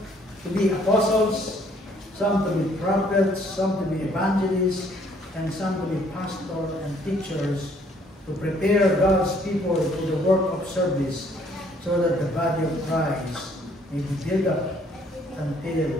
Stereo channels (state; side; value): normal; both; correlation 0.63